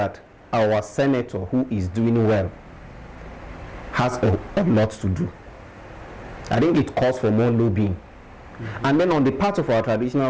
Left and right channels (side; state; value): both; identical; correlation 1.00